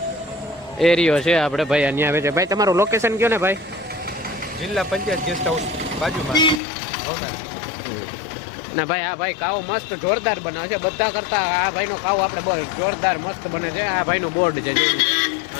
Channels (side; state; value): right; drops out; at 6.6 s